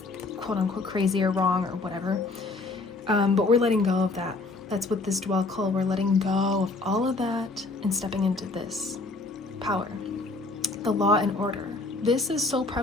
quote unquote crazy or wrong or whatever. But we're letting go of that. That's what this dwell call. We're letting go of all of that and stepping into this power, the law and order. This is so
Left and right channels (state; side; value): quieter; right; 3.5 dB